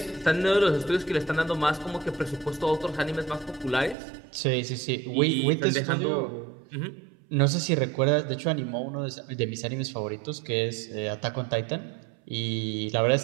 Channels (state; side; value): drops out; left; at 4.0 s